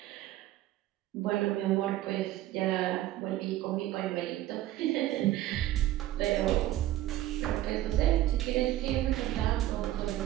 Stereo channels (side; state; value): left; quieter; 14.5 dB